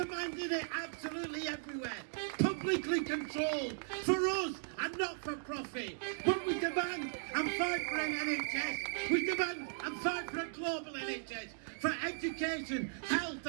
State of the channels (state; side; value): silent; left; digital silence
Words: it absolutely everywhere. Public publicly controlled for us and not for profit. But we demand and fight for an NHS. We demand and fight for a global NHS, for education, health